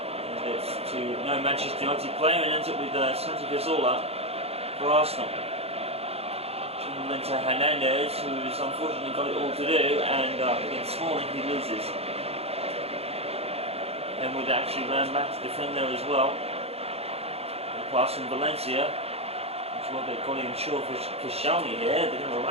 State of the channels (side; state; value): left; late; 0.29 ms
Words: it's to no Manchester United player, and ends up with Santi Cazorla for Arsenal. Chamberlain to Hernandez, who's unfortunately got it all to do, and against Smalling he loses. And would actually ran back to defend there as well. Pass from Valencia. Well, they've got him short for Koscielny here. They're going to